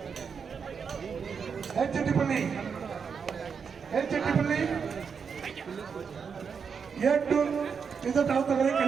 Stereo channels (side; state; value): left; quieter; 6.2 dB